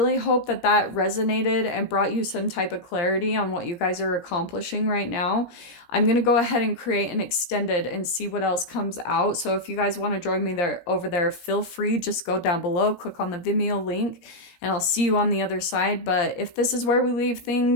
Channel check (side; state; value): right; late; 17 ms